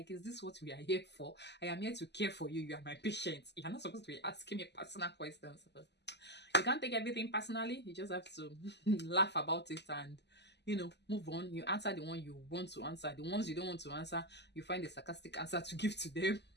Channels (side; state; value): right; late; 0.50 ms